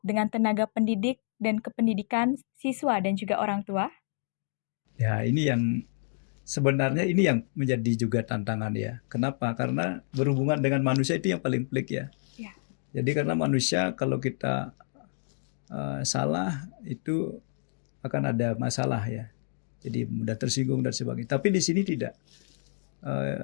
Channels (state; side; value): silent; right; digital silence